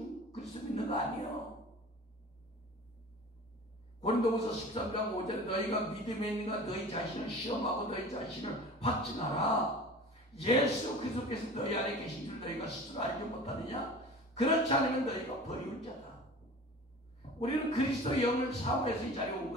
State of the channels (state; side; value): normal; both; correlation 0.39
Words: 그리스도 믿는 거 아니에요. 고린도후서 13장 5절에 너희가 믿음에 있는가 너희 자신을 시험하고 너희 자신을 확증하라. 예수 그리스도께서 너희 안에 계신 줄 너희가 스스로 알지 못하느냐? 그렇지 않으면 너희가 버리울 자다. 우리는 그리스도의 영을 사모해서 이 자리에 온